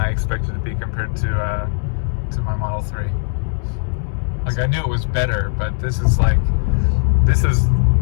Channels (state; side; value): silent; right; digital silence